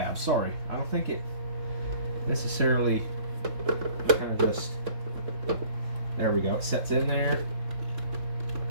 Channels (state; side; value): late; left; 3.7 ms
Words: sorry. I don't think it necessarily kind of just, there we go. It sets in there